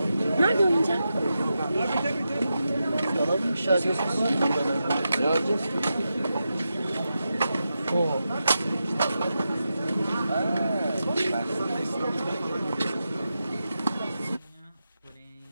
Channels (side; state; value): both; inverted; correlation -0.89